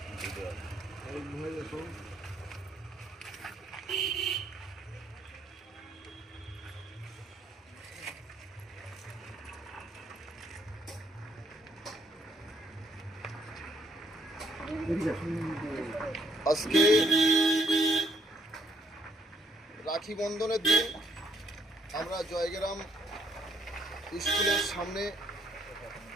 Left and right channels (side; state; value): both; normal; correlation 0.68